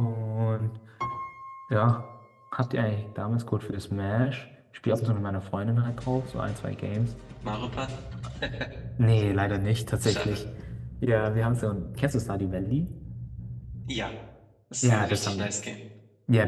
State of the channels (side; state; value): both; identical; correlation 1.00